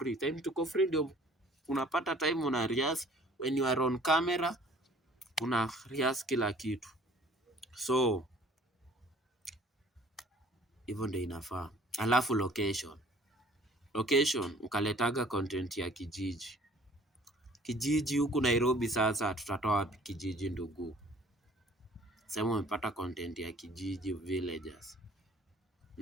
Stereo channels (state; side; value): normal; both; correlation 0.54